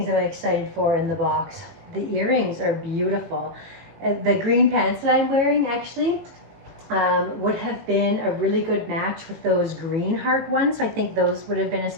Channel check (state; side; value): late; left; 18 ms